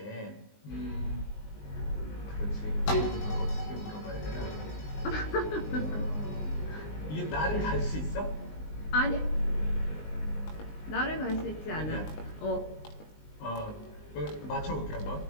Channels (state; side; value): late; right; 19 ms